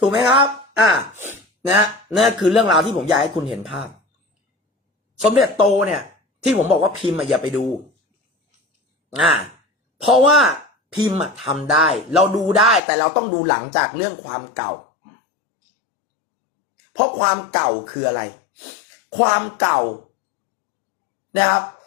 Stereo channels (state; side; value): drops out; right; at 12.8 s